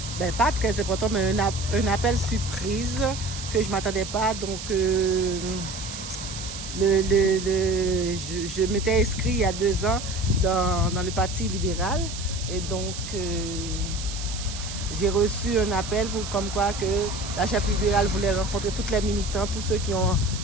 ben pas très important, mais un appel surprise que je ne m'attendais pas. Donc, je m'étais inscrit il y a 2 ans dans le Parti libéral. Et donc, j'ai reçu un appel comme quoi que la chef libérale voulait rencontrer toutes les militants, tous ceux qui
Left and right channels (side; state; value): right; noise; hiss, 9 dB below the sound